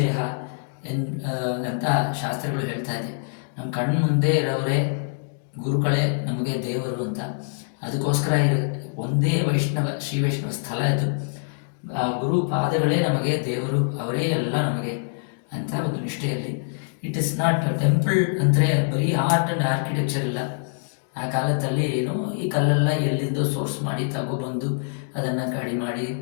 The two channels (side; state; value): right; silent; digital silence